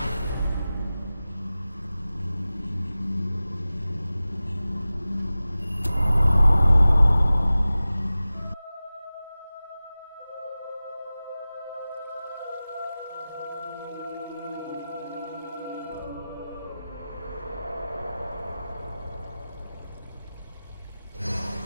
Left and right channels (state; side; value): inverted; both; correlation -0.96